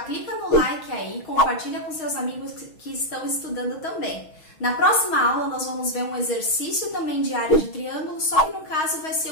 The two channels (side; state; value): right; late; 6.3 ms